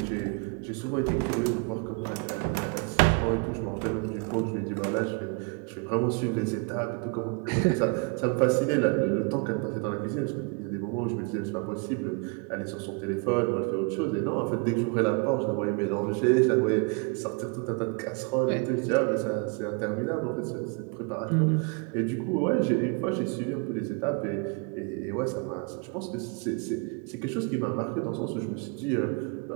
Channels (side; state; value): left; quieter; 34.1 dB